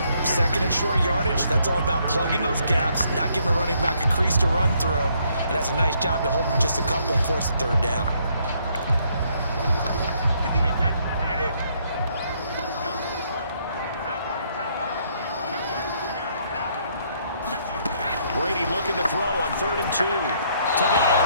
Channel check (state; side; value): inverted; both; correlation -0.70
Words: 2nd and short yardage, that's all about plugging those gaps, not giving a running back a crease to run through. And that's a nice job to hold him just a couple and force the 3rd down. Brady looking to throw on 3rd and 2. To the